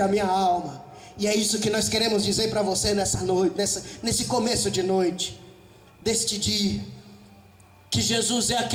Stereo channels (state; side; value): identical; both; correlation 1.00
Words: minha alma. E é isso que nós queremos dizer para você nessa noite, nesse começo de noite, deste dia, que Jesus é